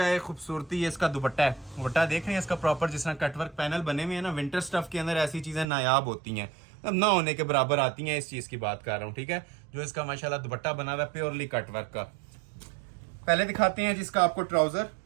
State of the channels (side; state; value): left; drops out; at 5.7 s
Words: है खूबसूरती। ये इसका दुपट्टा है, दुपट्टा देख रहे हैं इसका प्रॉपर, जिस तरह कटवर्क पैनल बने हुए हैं ना, विंटर स्टफ के अंदर ऐसी चीजें नायाब होती हैं, अब ना होने के बराबर आती हैं। इस चीज की बात कर रहा हूँ, ठीक है। जो इसका माशाल्लाह दुपट्टा बना हुआ है प्योरली कटवर्क का। पहले दिखाते हैं जिसका आपको ट्राउजर,